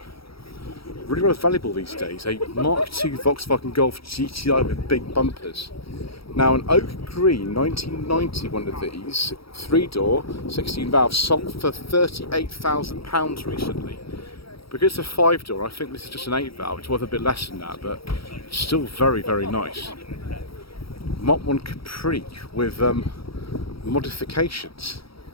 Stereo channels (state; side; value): late; right; 0.75 ms